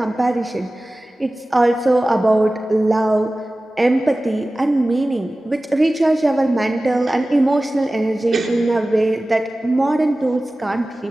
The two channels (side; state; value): both; normal; correlation 0.97